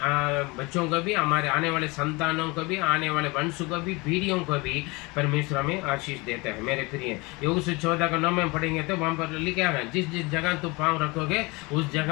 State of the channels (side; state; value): right; quieter; 25.6 dB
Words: बच्चों को भी, हमारे आने वाले संतानों को भी, आने वाले वंश को भी, पीढ़ियों को भी परमेश्वर हमें आशीष देता है। मेरे प्रिय, योग 14 का 9 में पढ़ेंगे तो वहां पर लिखा है, जिस जिस जगह तुम पाँव रखोगे उस